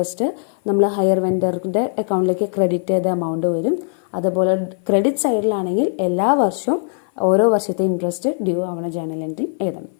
നമ്മൾ ഹയർ വെൻഡറിൻ്റെ അക്കൗണ്ടിലേക്ക് ക്രെഡിറ്റ് ചെയ്ത എമൗണ്ട് വരും. അതുപോലെ ക്രെഡിറ്റ് സൈഡിലാണെങ്കിൽ എല്ലാ വർഷവും ഓരോ വർഷത്തെ ഇൻട്രസ്റ്റ് ഡ്യൂ ആവുന്ന ജേണൽ എൻട്രി എഴുതണം.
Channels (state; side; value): silent; right; 55 dB below the other